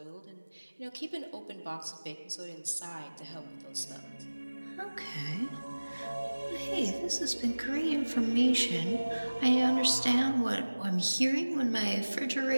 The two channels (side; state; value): both; inverted; correlation -1.00